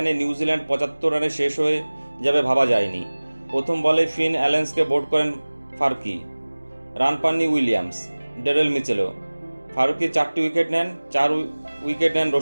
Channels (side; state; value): both; inverted; correlation -1.00